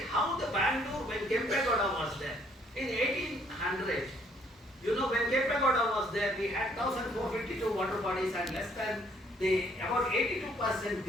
the Bangalore, when Kempegowda was there. In 1800, you know, when Kempegowda was there, we had 1,452 water bodies and less than about 82%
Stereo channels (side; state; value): both; normal; correlation 0.65